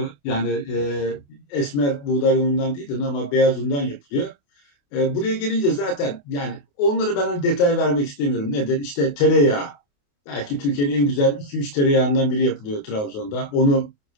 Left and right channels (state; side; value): late; right; 28 ms